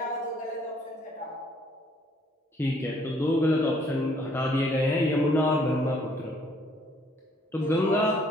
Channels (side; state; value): both; normal; correlation 0.64